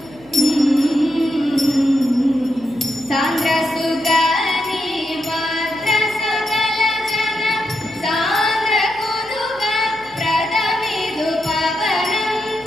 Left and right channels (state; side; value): noise; left; hum, 25 dB below the sound